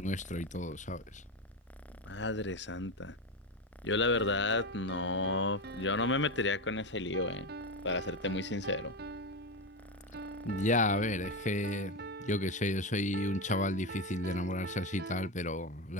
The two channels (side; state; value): both; normal; correlation 0.16